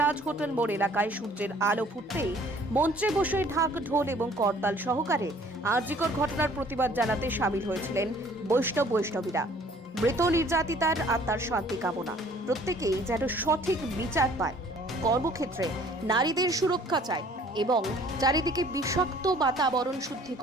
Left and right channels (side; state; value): both; normal; correlation 0.55